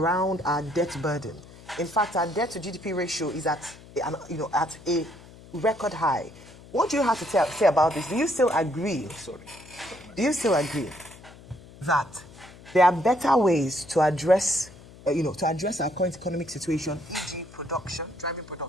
our debt burden. In fact, our debt to GDP ratio is at a record high. What do you have to say about this? Do you still agree? Do you still agree that there are better ways to address our current economic situation, e.g. driving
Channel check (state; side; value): noise; left; hum, 20 dB below the sound